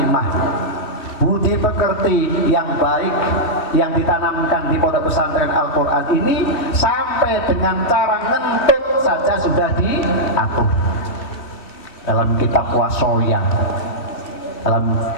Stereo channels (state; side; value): late; right; 3.1 ms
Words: budi pekerti yang baik yang ditanamkan di pondok pesantren Al-Quran ini sampai dengan cara ngentut saja sudah diatur dalam kitab Wasoya, dalam